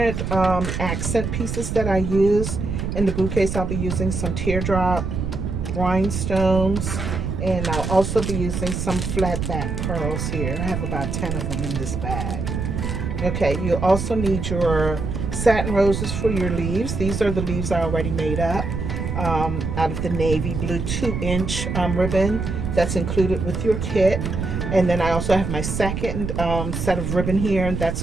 accent pieces that I use. In the bouquets, I'll be using some teardrop rhinestones, and I'll also be using some flat back pearls here. I have about 10 of them in this bag. Okay, you also need your satin roses for your leaves. These are the leaves I already made up out of the navy blue 2-inch ribbon that's included with your kit. And then I also have my second set of ribbon here, and that's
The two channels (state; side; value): noise; right; rumble, 3 dB below the sound